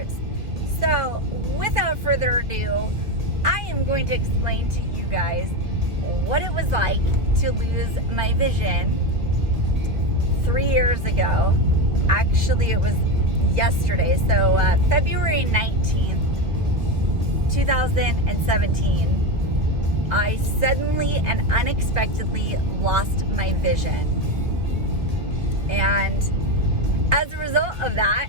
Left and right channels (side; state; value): left; late; 1.6 ms